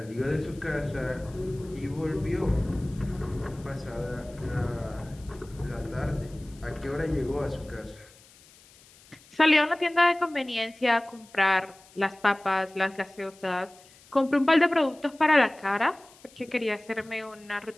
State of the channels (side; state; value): left; noise; hiss, 25 dB below the sound